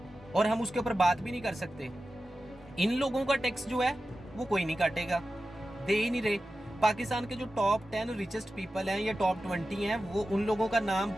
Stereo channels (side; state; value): both; normal; correlation 0.93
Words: और हम उसके ऊपर बात भी नहीं कर सकते। इन लोगों का टैक्स जो है वो कोई नहीं काटेगा, दे ही नहीं रहे। पाकिस्तान के जो टॉप 10 रिचेस्ट पीपल हैं या टॉप 20 हैं, वो उन लोगों का नाम